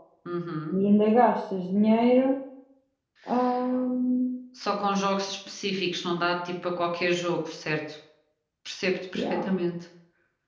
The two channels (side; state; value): both; identical; correlation 1.00